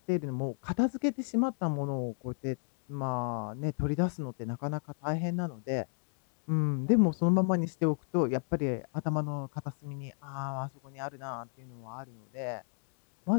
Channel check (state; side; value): silent; right; 56 dB below the other